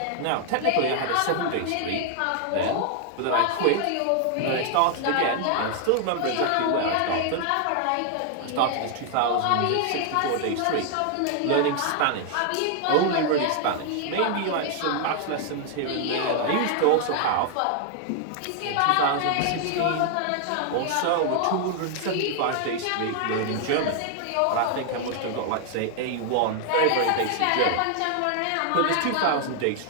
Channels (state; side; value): different; both; correlation 0.00